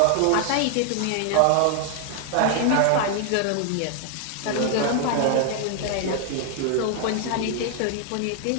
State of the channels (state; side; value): different; both; correlation 0.00